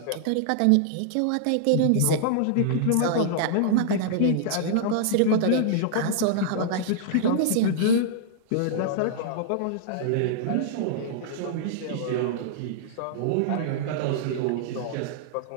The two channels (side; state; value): both; different; correlation -0.01